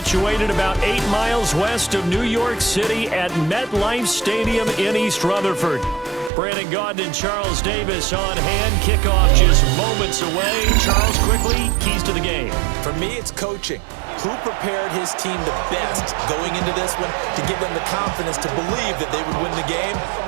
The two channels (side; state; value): left; drops out; at 6.3 s